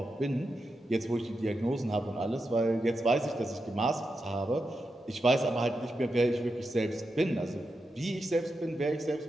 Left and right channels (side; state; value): both; normal; correlation 0.87